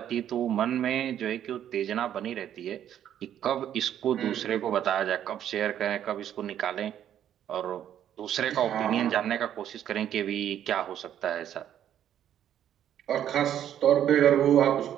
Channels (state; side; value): quieter; left; 10.4 dB